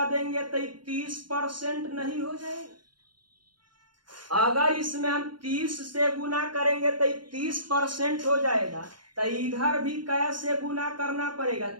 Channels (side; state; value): left; late; 0.71 ms